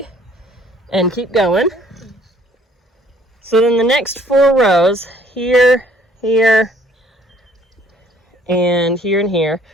and keep going. So then the next 4 rows, here, here, and here,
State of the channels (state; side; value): normal; both; correlation 0.59